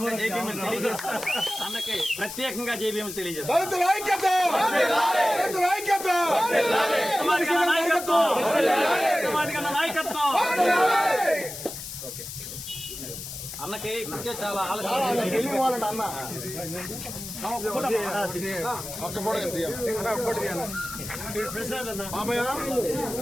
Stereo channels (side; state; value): left; noise; hiss, 9 dB below the sound